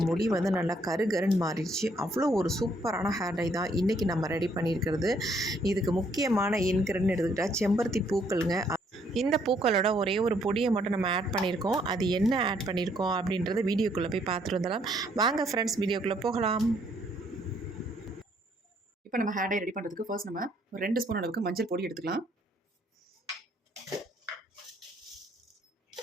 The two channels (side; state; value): both; normal; correlation 0.68